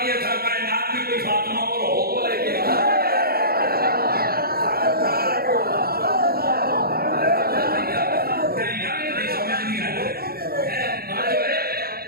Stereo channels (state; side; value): late; left; 0.44 ms